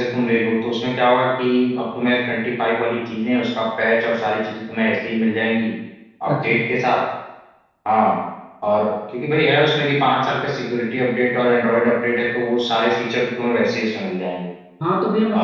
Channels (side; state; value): both; identical; correlation 1.00